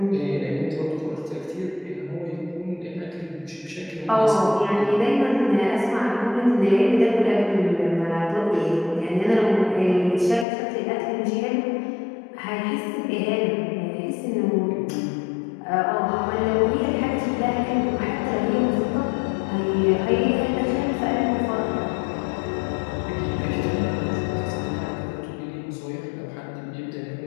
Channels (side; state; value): right; drops out; at 10.5 s